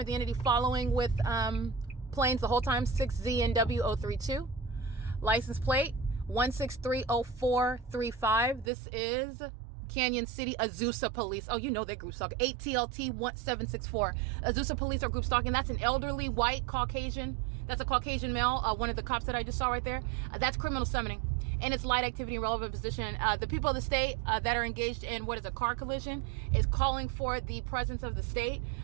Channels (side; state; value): left; drops out; at 8.7 s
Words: The entity following with planes the whole time, 6ZNW032. License plate 1630435. This is Canyon City AZUSA police. Oh, you know they're group stalking. 8TLT1764. AZUSA police are group stalking. That's an elderly white Caucasian. That's a Caucasian male. One of the cops that I just saw right there. That's criminal summoning. And it's light activity in relevant position. The people of the state that are engaged in what is a car collision is calling for the presence of the state.